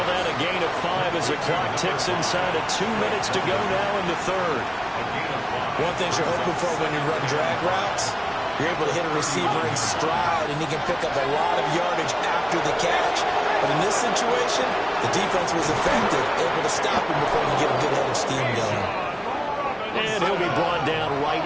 that a gain of 5 as the clock ticks inside of 2 minutes to go now in the third. One thing you're hoping for when you run drag routes, you're able to hit a receiver in stride, and he can pick up a lot of yardage after the catch. But in this situation, the defense was effective, able to stop him before he get a good head of steam going. And he'll be brought down right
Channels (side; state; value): both; identical; correlation 1.00